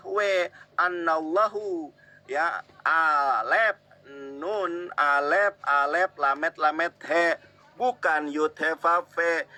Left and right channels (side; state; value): both; identical; correlation 1.00